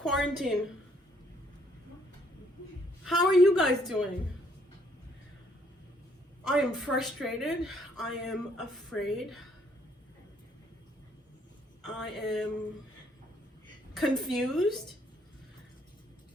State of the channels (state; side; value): normal; both; correlation 0.67